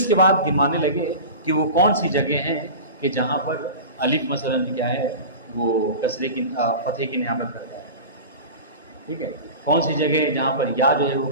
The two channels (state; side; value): inverted; both; correlation -0.32